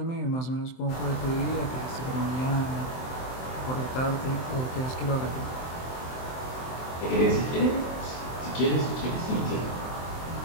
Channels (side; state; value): right; late; 23 ms